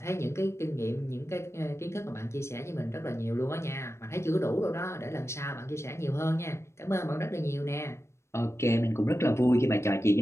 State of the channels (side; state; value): right; late; 0.13 ms